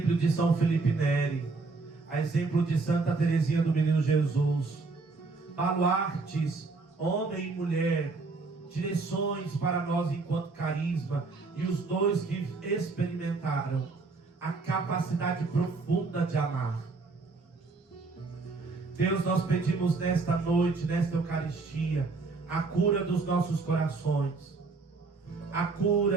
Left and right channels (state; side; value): quieter; left; 4.0 dB